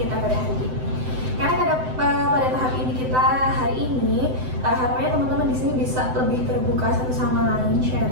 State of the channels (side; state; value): left; late; 7.8 ms